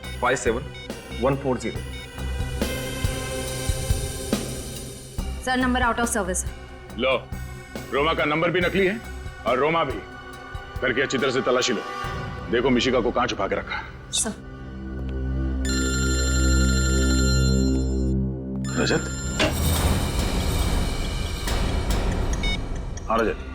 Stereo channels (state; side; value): identical; both; correlation 1.00